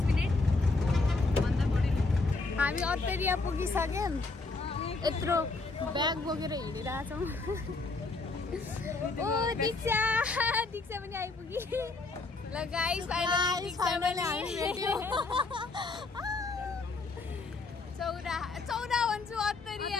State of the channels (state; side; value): quieter; right; 3.7 dB